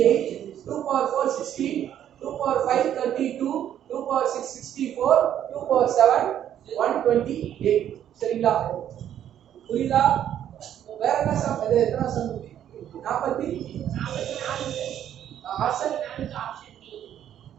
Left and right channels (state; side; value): quieter; left; 10.5 dB